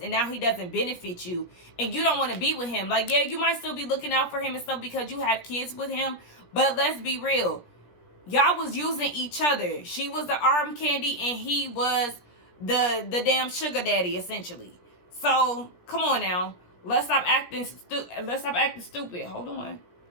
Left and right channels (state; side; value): late; right; 17 ms